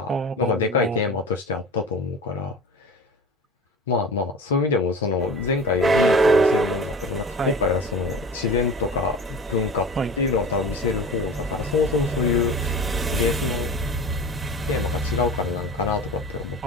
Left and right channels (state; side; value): normal; both; correlation 0.35